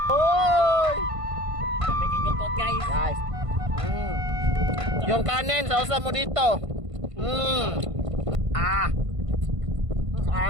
Oy! Making lutot guys. Guys. Yung kanin, sausa mo dito. Ah.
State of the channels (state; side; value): late; left; 1.5 ms